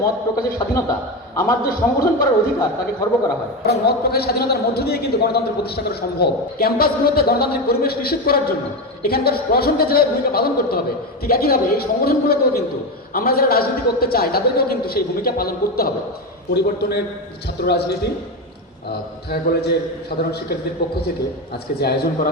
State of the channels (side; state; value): both; normal; correlation 0.16